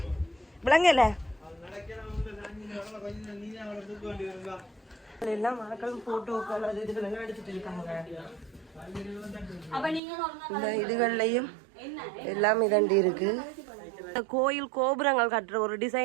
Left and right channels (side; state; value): left; drops out; at 10.0 s